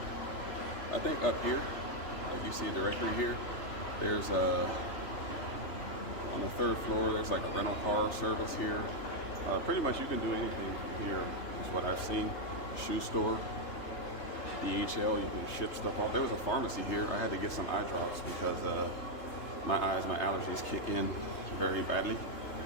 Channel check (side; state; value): right; late; 3.3 ms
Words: I think up here, like you see a directory here, there's on the 3rd floor, there's like a rental car service here. Pretty much you can do anything from here, is what I've seen. Shoe store, DHL, you can ship stuff off. There was a pharmacy here. I had to get some eye drops because my allergies kick in very badly,